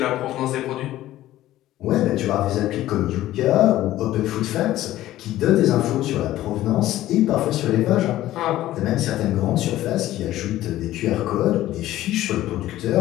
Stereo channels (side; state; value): right; quieter; 14.6 dB